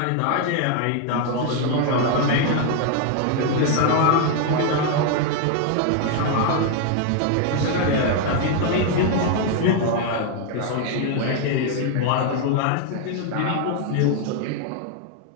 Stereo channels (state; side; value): different; both; correlation 0.00